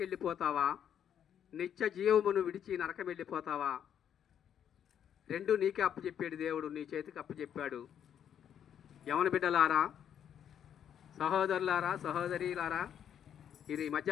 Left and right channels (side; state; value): right; quieter; 9.1 dB